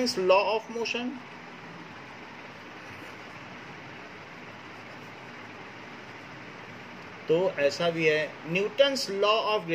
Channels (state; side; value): identical; both; correlation 1.00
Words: law of motion. तो ऐसा भी है न्यूटन्स लॉ ऑफ